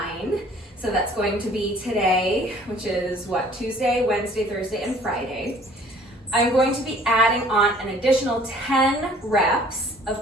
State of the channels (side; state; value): both; normal; correlation 0.54